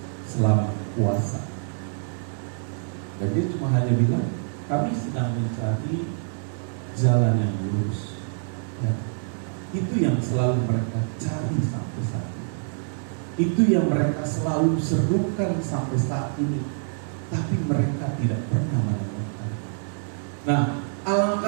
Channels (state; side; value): silent; left; 61 dB below the other